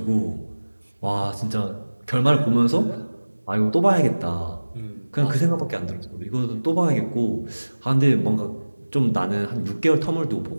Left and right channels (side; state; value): both; inverted; correlation -1.00